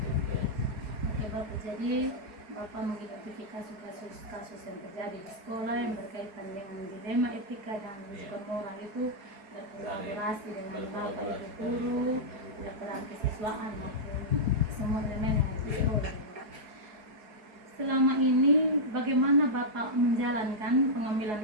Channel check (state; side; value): late; left; 4.7 ms